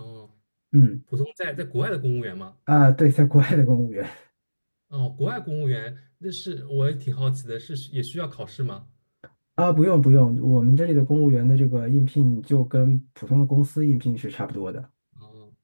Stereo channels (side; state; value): both; inverted; correlation -1.00